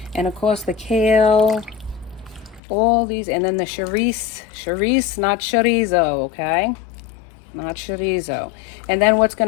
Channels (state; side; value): drops out; right; at 2.6 s